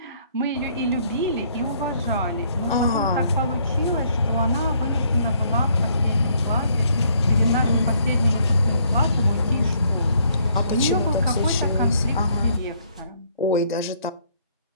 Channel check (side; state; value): both; inverted; correlation -0.67